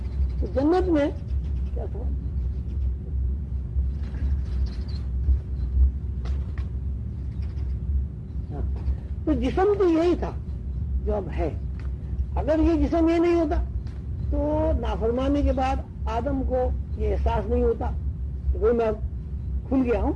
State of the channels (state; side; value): identical; both; correlation 1.00